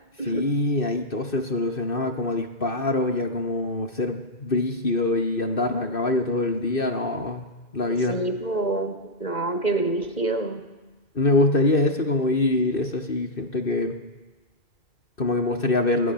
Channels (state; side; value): late; right; 2.6 ms